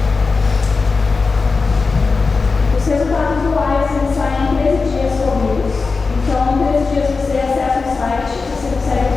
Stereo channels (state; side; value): quieter; right; 4.3 dB